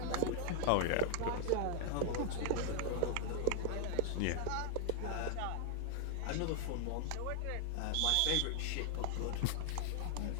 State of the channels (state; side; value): different; both; correlation -0.01